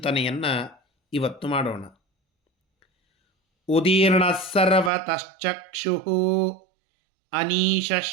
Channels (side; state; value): left; drops out; at 4.9 s